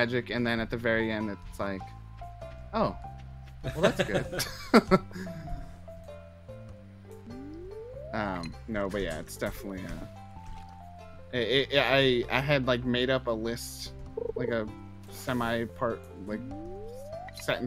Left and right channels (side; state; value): both; identical; correlation 1.00